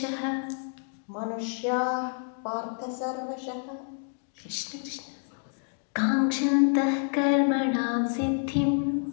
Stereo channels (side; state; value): right; silent; 59 dB below the other